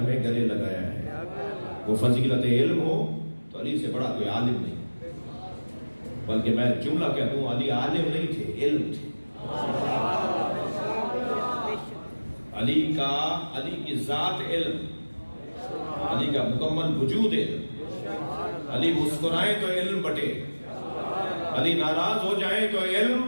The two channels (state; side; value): inverted; both; correlation -1.00